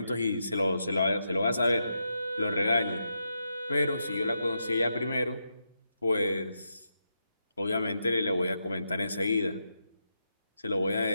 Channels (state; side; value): inverted; both; correlation -0.84